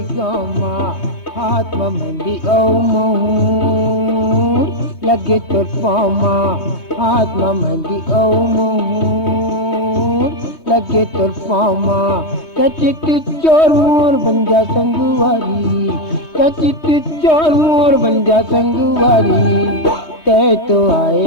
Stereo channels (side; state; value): right; late; 3.2 ms